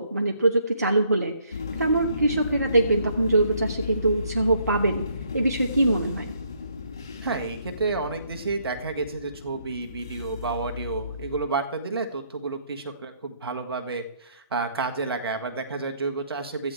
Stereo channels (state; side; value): inverted; both; correlation -0.68